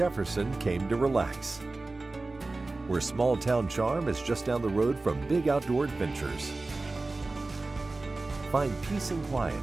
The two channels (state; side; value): quieter; left; 3.3 dB